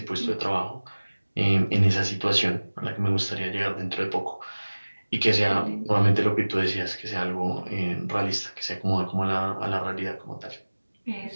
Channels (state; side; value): inverted; both; correlation -1.00